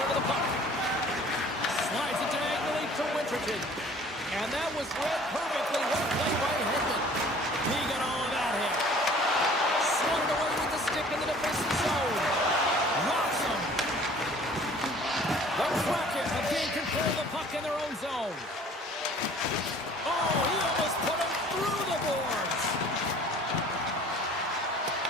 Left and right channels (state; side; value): normal; both; correlation 0.51